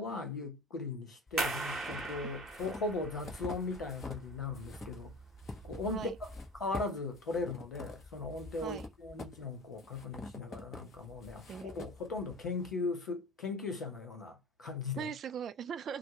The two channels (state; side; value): normal; both; correlation 0.36